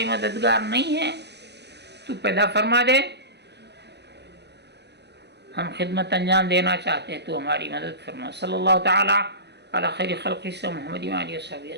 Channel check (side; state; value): left; late; 0.49 ms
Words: مددگار نہیں ہے، تو پیدا فرما دے، ہم خدمت انجام دینا چاہتے ہیں، تو ہماری مدد فرما۔ صلی اللہ تعالی علی خیر خلق محمد و آلہ و صحبہ